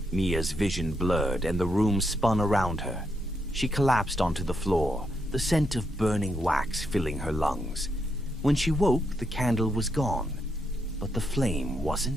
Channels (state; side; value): normal; both; correlation 0.80